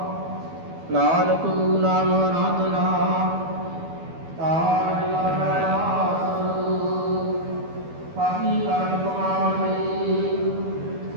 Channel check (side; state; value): left; late; 12 ms